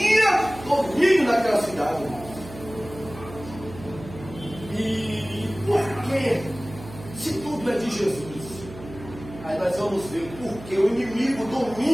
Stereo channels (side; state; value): right; noise; hum, 15 dB below the sound